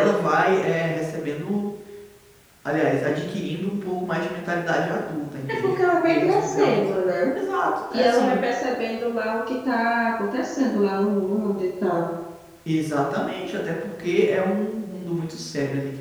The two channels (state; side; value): identical; both; correlation 1.00